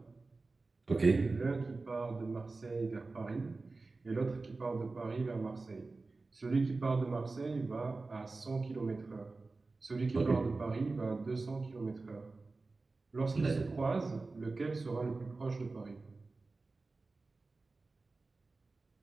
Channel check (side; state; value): left; quieter; 3.7 dB